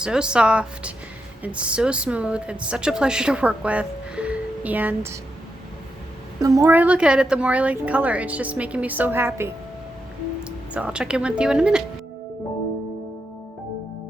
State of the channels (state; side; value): normal; both; correlation 0.84